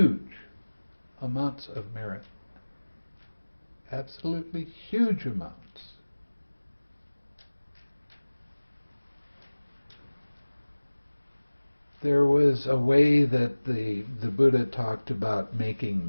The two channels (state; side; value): inverted; both; correlation -1.00